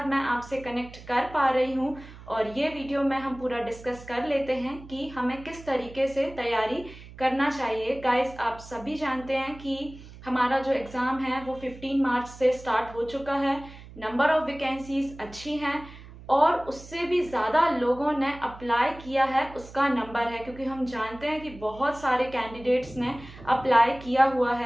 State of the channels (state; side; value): noise; right; hum, 17 dB below the sound